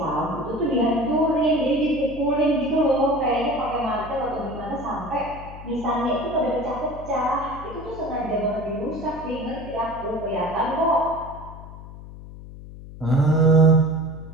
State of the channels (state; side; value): noise; left; hum, 14 dB below the sound